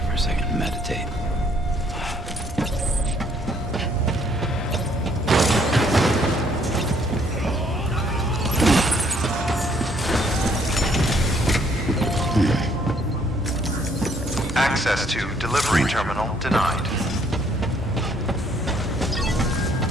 for a second and meditate. Access to delivery terminal denied.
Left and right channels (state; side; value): normal; both; correlation 0.65